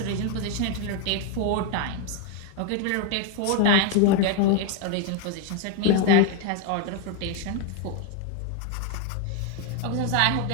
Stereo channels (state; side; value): different; both; correlation 0.01